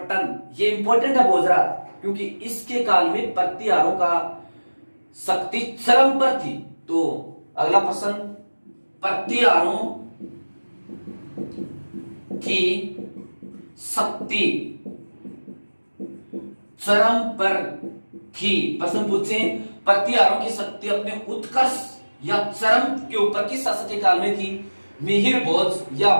ये इंपॉर्टेंट है भोजराज, क्योंकि इसके काल में प्रतिहारों का शक्ति चरम पर थी। तो अगला प्रश्न, प्रतिहारों की शक्ति चरम पर थी। प्रश्न पूछे, प्रतिहारों की शक्ति अपने उत्कर्ष या चरम के ऊपर किस शासक के काल में थी? मिहिर भोज या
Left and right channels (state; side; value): inverted; both; correlation -1.00